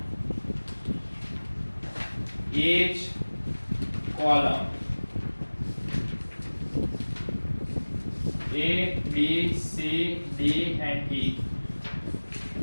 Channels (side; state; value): both; inverted; correlation -1.00